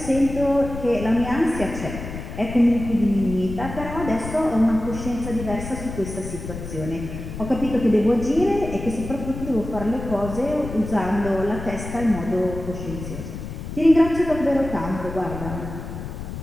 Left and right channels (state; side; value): noise; left; rumble, 9 dB below the sound